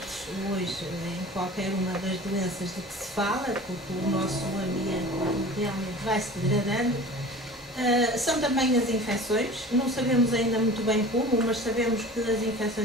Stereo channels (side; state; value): both; normal; correlation 0.40